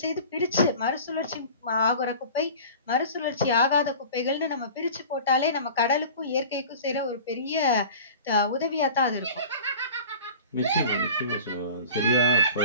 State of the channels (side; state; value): both; inverted; correlation -0.40